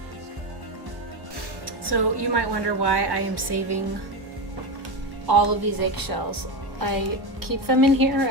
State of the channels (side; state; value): left; late; 1.1 ms